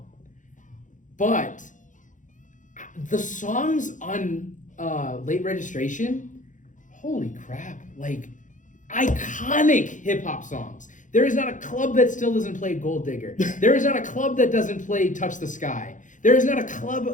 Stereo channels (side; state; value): right; late; 0.37 ms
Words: But the songs on Late Registration, holy crap, like iconic hip hop songs. There is not a club that still doesn't play Gold Digger. There is not a club that doesn't play Touch the Sky. There is not a